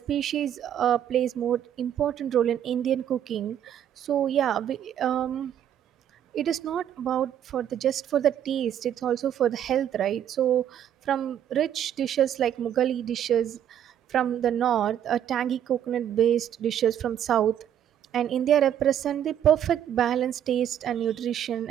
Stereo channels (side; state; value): left; quieter; 10.1 dB